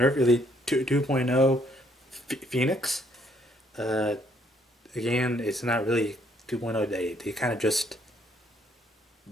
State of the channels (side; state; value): both; normal; correlation 0.67